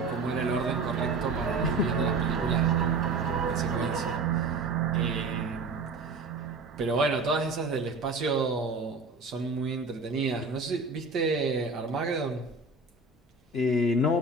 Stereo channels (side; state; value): left; quieter; 3.5 dB